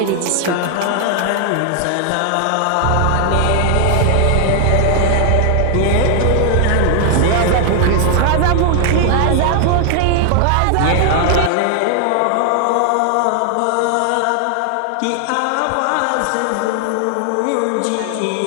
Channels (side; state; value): both; different; correlation 0.00